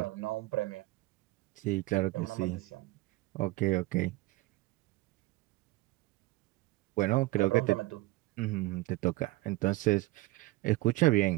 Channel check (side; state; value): left; quieter; 19.7 dB